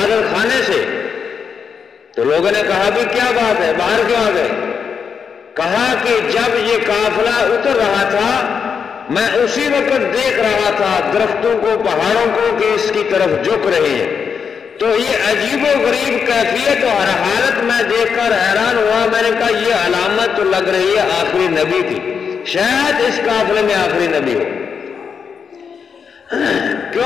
خانے سے. تو لوگوں نے کہا بھی کیا بات ہے, باہر کیوں آ گئے؟ کہا کہ جب یہ قافلہ اتر رہا تھا میں اسی وقت دیکھ رہا تھا درختوں کو، پہاڑوں کو کہ اس کی طرف جھک رہے ہیں۔ تو یہ عجیب و غریب کیفیت اور حالت میں دیکھ کر حیران ہوا۔ میں نے کہا یہ علامت تو لگ رہی ہے آخری نبی کی، شاید اس قافلے میں آخری نبی ہو،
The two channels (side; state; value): right; quieter; 6.5 dB